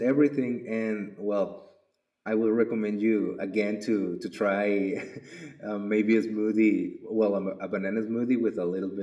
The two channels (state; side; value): identical; both; correlation 1.00